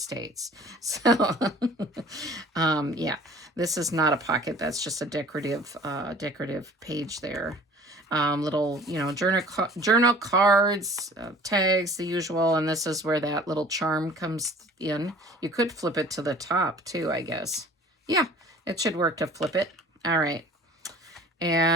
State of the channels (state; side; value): normal; both; correlation 0.48